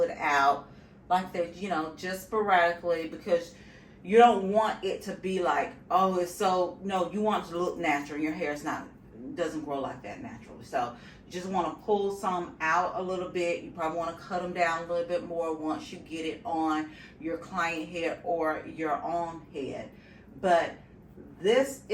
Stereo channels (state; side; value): identical; both; correlation 1.00